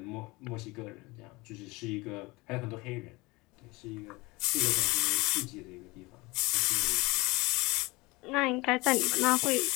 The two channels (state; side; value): quieter; right; 23.4 dB